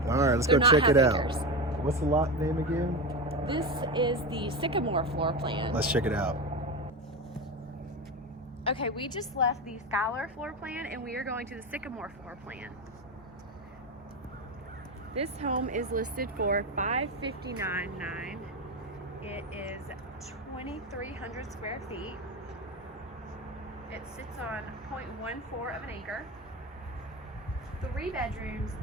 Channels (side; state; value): both; normal; correlation 0.20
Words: All right, let's go check it out. What's the lot name again? This is the Sycamore floor plan. Let's check it out. Okay, we just left the Skylar floor plan and we are going to the Sycamore floor plan. This home is listed for $559,900. It is 2,300 square feet. It sits on 0.14 of an acre. 3 bedrooms,